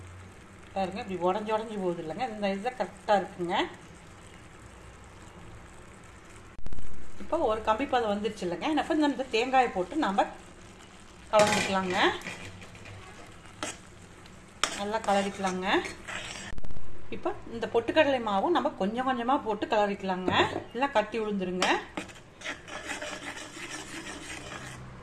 பாருங்க, இப்படி உடஞ்சி போகுது இல்லைங்க. இந்த இதில் கரெக்டாக இருக்குங்க. இப்போ ஒரு கம்பி பதம் வந்துருச்சு இல்லைங்க. இப்போ இந்த தேங்காயை போட்டு நம்ம கலந்துக்கலாங்க. நல்லா கலரிக்கலாங்க. இப்போ இந்த பொட்டுக்கடலை மாவும் நம்ம கொஞ்சம் கொஞ்சமாக போட்டு கலரிக்கலாங்க, இல்லை கட்டி விழுந்துருங்க.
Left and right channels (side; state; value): both; identical; correlation 1.00